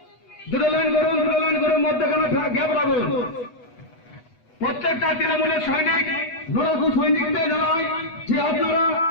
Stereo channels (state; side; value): late; right; 8.1 ms